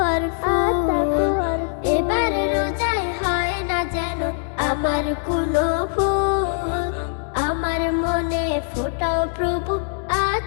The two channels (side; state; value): right; silent; digital silence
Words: আর ফুল। এবার রোজায় হয় না যেন আমার কোনো ভুল, আমার মনে ফোটাও প্রভু